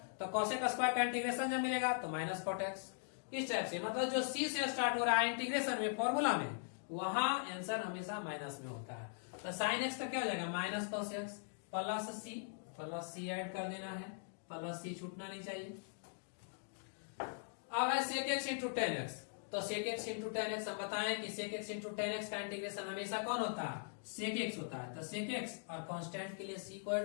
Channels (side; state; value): right; silent; digital silence